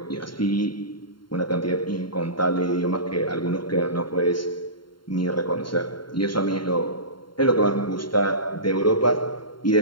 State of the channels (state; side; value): late; right; 0.72 ms